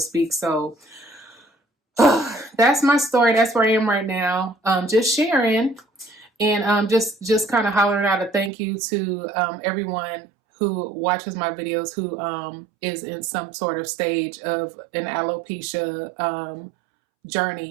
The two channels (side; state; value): left; drops out; at 8.5 s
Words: So that's my story. That's where I am right now. Just sharing. And just kind of hollering out a thank you to everyone who watches my videos, who is in some sort of stage of an alopecia